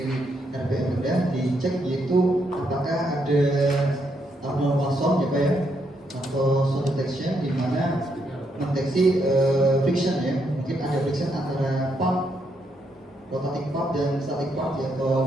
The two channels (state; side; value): normal; both; correlation 0.77